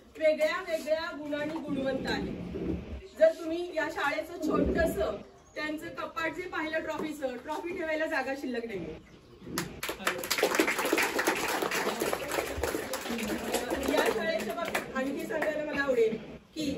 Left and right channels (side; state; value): both; identical; correlation 1.00